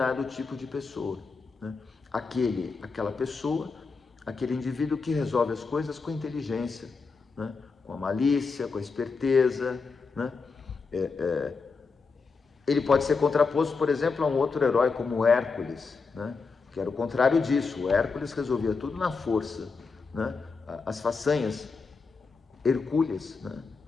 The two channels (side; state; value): right; quieter; 4.7 dB